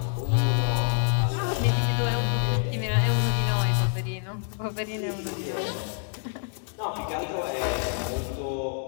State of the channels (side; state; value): right; silent; 60 dB below the other